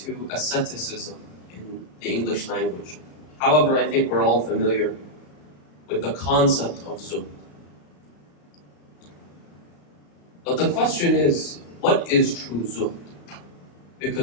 asceticism in the English language. However, I think we're all familiar with the concept of zuhd. But the question is, what is true zuhd?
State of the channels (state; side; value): late; right; 34 ms